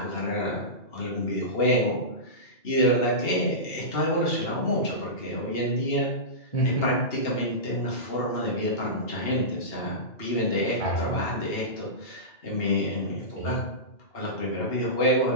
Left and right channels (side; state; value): right; late; 2.8 ms